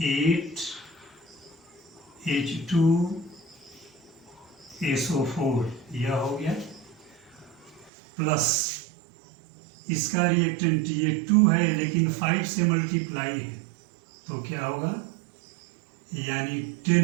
8H2SO4 यह हो गया, प्लस इसका रिएक्टेंट ये 2 है लेकिन 5 से मल्टीप्लाई है, तो क्या होगा, यानी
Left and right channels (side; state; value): left; drops out; at 7.9 s